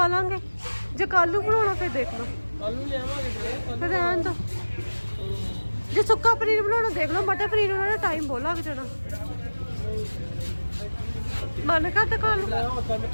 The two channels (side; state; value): both; inverted; correlation -1.00